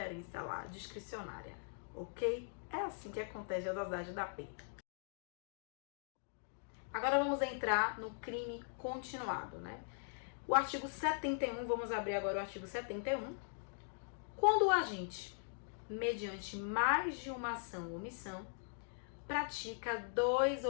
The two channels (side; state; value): right; silent; digital silence